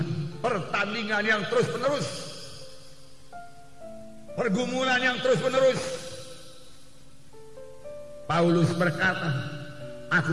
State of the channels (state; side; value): identical; both; correlation 1.00